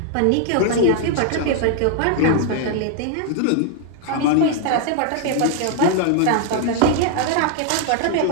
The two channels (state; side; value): different; both; correlation 0.00